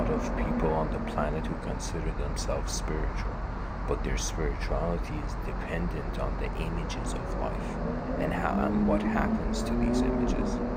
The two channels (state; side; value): identical; both; correlation 1.00